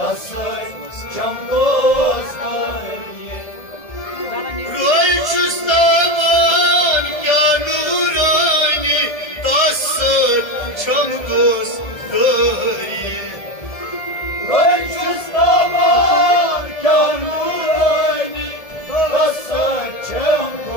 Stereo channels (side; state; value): right; late; 1.7 ms